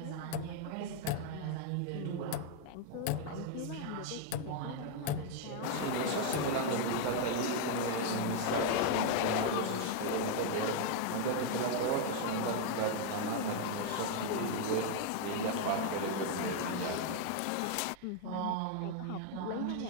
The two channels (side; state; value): both; different; correlation 0.00